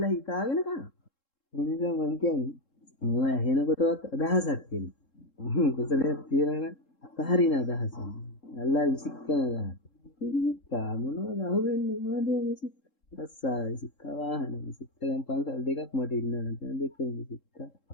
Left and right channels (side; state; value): right; late; 3.7 ms